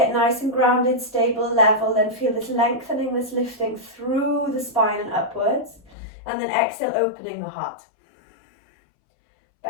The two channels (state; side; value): drops out; right; at 6.0 s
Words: nice and grounded, stable, level, then feel this lengthening, this lifting through the spine and upwards. And then exhale, opening the heart.